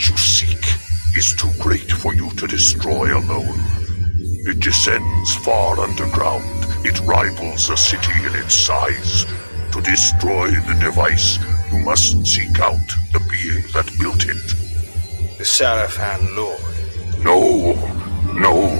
you seek is too great for you to destroy alone. It descends far underground. It rivals a city in its size. To destroy the device, you must seek out the being that built it. The Sarafan Lord. No,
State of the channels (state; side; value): inverted; both; correlation -1.00